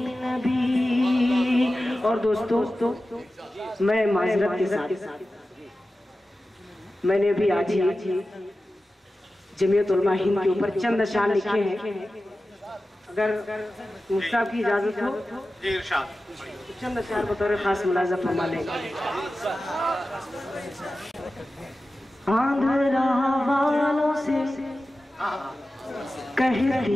नबी। और दोस्तों मैं माजरत के साथ मैंने भी आज ही जमीयत उलमा हिंद के ऊपर चंद अशार लिखे हैं। अगर मुफ्ता की इजाजत हो तो चंद अशार बतौर खास मुलाजा फरमा लेंगे। आंध्रा वालों से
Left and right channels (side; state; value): both; normal; correlation 0.94